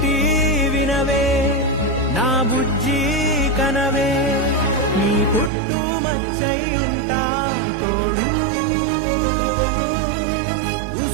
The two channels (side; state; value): left; drops out; at 5.5 s